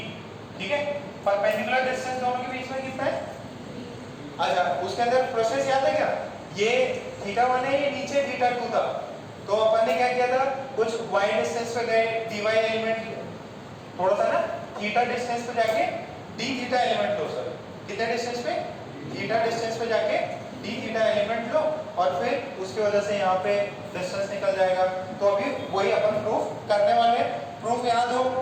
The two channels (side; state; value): both; identical; correlation 1.00